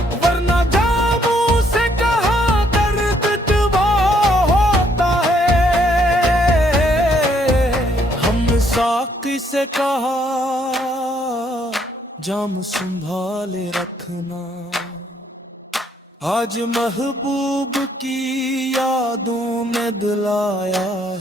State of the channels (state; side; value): normal; both; correlation 0.69